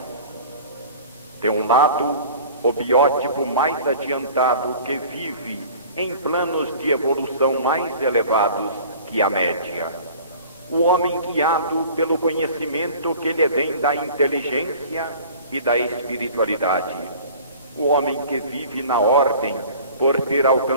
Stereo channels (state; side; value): inverted; both; correlation -0.44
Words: De um lado, o biótipo mais adiantado que vive em planos de evolução mais elevados que a média. O homem guiado pelo conhecimento que lhe vem da inteligência e da espiritualidade. O homem que vive na ordem por ter